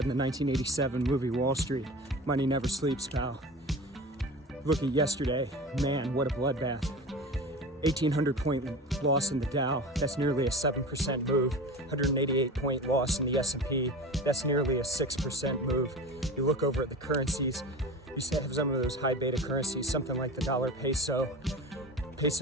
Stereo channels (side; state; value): both; normal; correlation 0.32